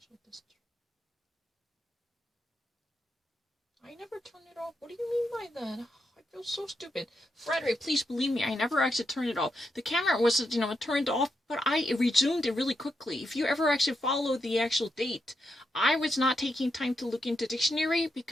district. I never turned it off. What do you mean by that? I feel so stupid. Frederick, please believe me, I never actually turned it off. The camera was, turned off, but I resumed it really quickly. If you ever actually follow the actual date, I was not taking time to look into dictionary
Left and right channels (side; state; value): both; normal; correlation 0.83